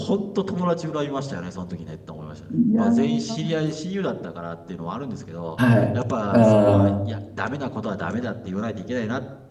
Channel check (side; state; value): both; identical; correlation 1.00